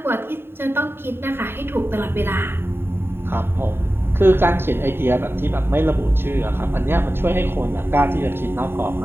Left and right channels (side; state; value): left; late; 0.11 ms